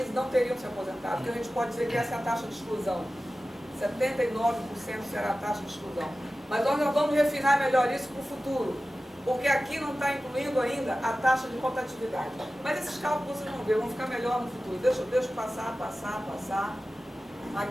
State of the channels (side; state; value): both; normal; correlation 0.95